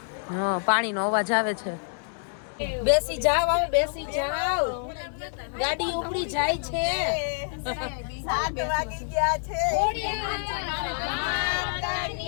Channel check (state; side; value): silent; right; digital silence